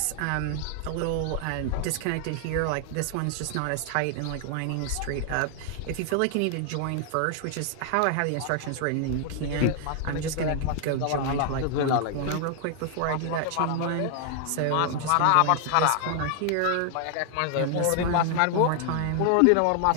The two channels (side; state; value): both; different; correlation 0.00